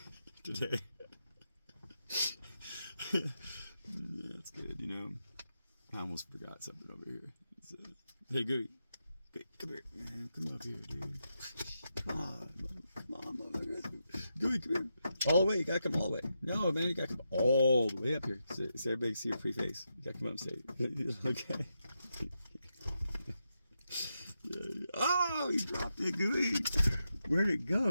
today. That's good, I almost forgot something over here. Hey, Gooey, come here, man. Come up here, dude. Come on, motherfucker. Gooey, come here. All the way. You gotta come all the way. No, man, you gotta come all the way up here so everybody can see your pretty face. You gotta come up and say it. Okay. Oh, you dropped it, Gooey. Where'd it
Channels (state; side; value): inverted; both; correlation -0.85